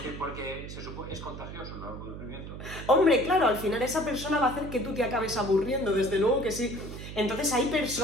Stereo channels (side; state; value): right; noise; hum, 10 dB below the sound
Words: Porque se supone, es contagioso el aburrimiento. Hombre, claro, al final esa persona va a hacer que tú te acabes aburriendo, desde luego que sí. Entonces hay